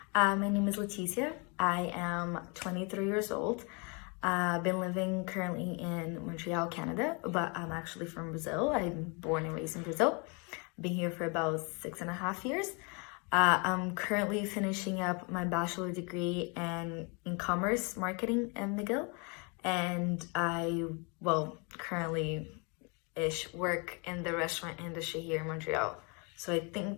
my name is Leticia. I am 23 years old. I've been living currently in Montreal, Canada, but I'm actually from Brazil. I'm born and raised in Brazil. Been here for about 6.5 years. I'm currently finishing up my bachelor degree in commerce marketing in McGill, and currently work in the restaurant industry here in Montreal. So I think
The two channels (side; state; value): right; quieter; 33.0 dB